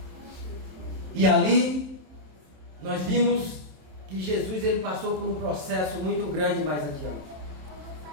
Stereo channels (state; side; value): late; left; 27 ms